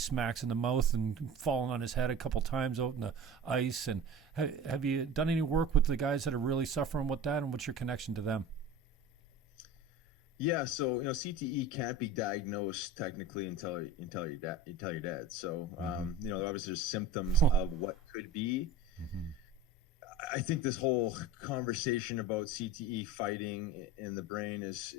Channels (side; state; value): both; normal; correlation 0.35